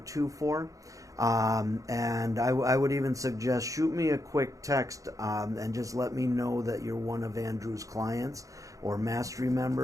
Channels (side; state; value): left; late; 0.16 ms